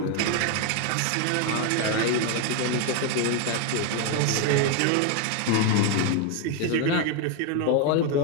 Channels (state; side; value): different; both; correlation 0.01